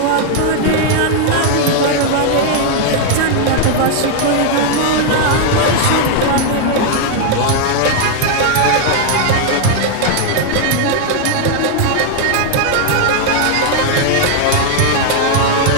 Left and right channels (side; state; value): both; different; correlation 0.00